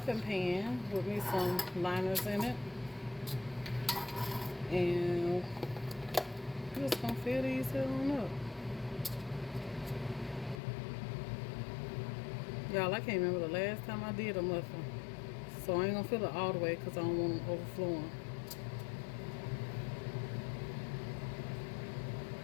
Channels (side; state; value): right; drops out; at 10.6 s